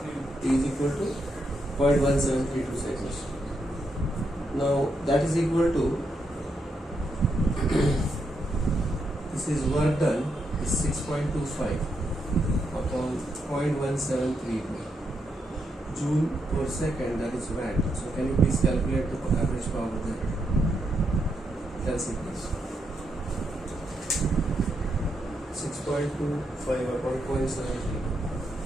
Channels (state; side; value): normal; both; correlation 0.81